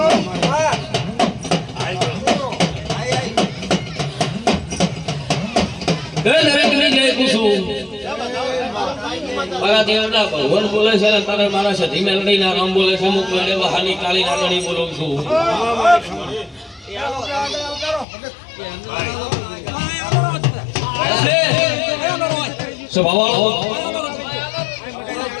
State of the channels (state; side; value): drops out; right; at 18.1 s